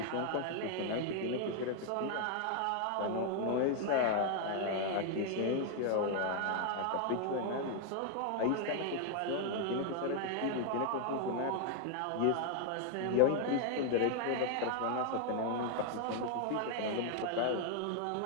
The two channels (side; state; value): both; different; correlation 0.00